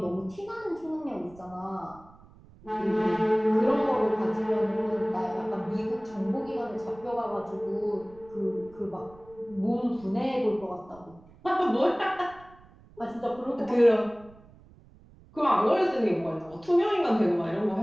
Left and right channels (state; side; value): noise; right; rumble, 24 dB below the sound